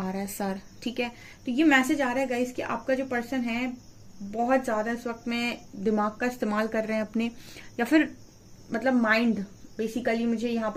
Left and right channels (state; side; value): identical; both; correlation 1.00